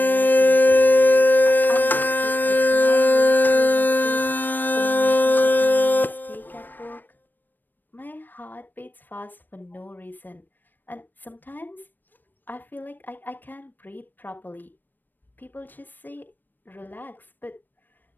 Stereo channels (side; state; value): right; late; 0.091 ms